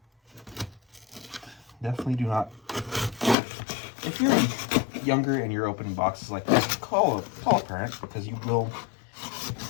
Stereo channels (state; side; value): drops out; right; at 3.4 s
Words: Definitely do not, if you're younger and you're opening boxes like this, call a parent, because you will